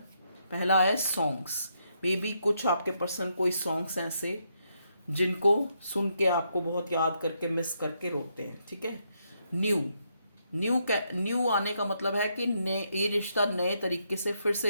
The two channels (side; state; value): both; inverted; correlation -0.78